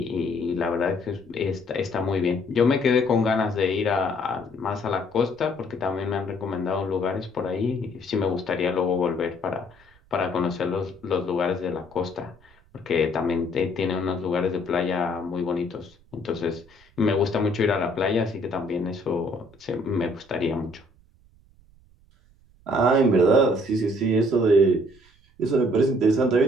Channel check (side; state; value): right; noise; rumble, 29 dB below the sound